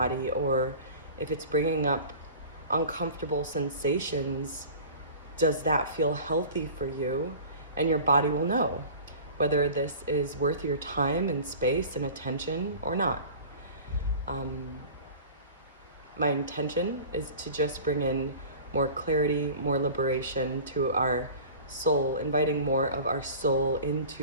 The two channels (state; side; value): inverted; both; correlation -0.40